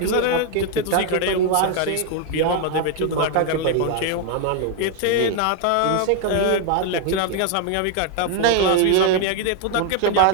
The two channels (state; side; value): different; both; correlation 0.00